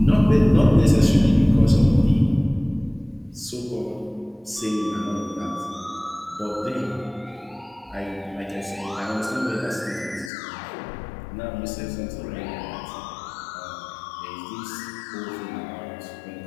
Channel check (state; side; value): drops out; right; at 10.3 s